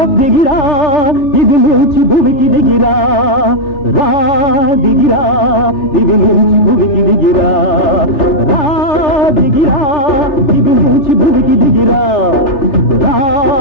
దిగిరా ఇది నుంచి భూమికి దిగిరా రా దిగిరా ఇది నుంచి భూమికి దిగిరా రా దిగిరా ఇది నుంచి భూమికి దిగిరా రా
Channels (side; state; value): right; late; 3.4 ms